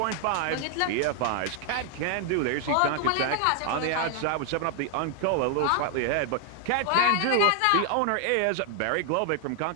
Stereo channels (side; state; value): both; different; correlation 0.00